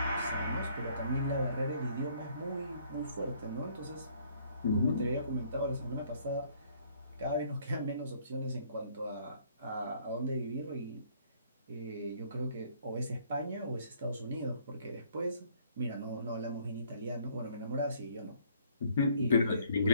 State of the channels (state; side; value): inverted; both; correlation -0.62